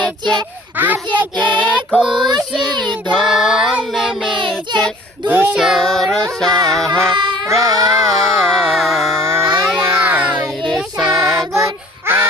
আজকে খুশির ঢল নেমেছে ধূসর সাহারায়। রে সাগর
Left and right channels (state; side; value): normal; both; correlation 0.50